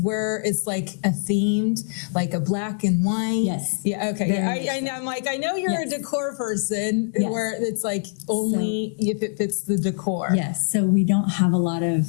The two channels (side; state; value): right; silent; digital silence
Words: it's like a themed, like a black and white. Yes. Yeah. Okay. I know. I'm like, I know you're a decor person where it's like only if it fits the decor. Yes. So we don't have a lot of